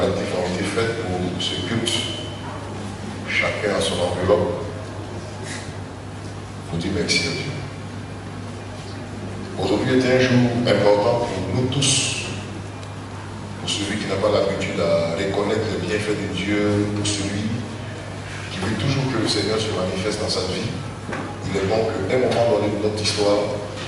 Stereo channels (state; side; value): identical; both; correlation 1.00